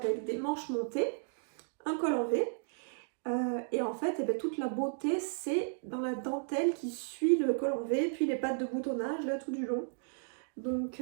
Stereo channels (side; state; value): left; silent; digital silence